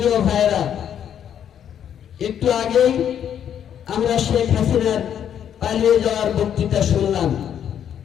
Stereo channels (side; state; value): right; quieter; 9.3 dB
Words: ভাইরা, একটু আগেই আমরা শেখ হাসিনার পালিয়ে যাওয়ার বক্তৃতা শুনলাম।